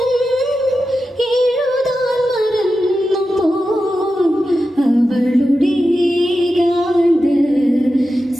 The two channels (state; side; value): normal; both; correlation 0.91